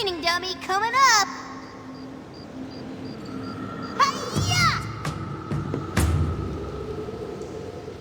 dummy coming up. Hi-ya!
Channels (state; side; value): identical; both; correlation 1.00